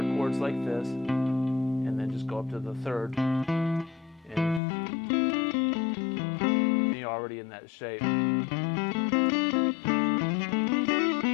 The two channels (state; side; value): drops out; right; at 4.6 s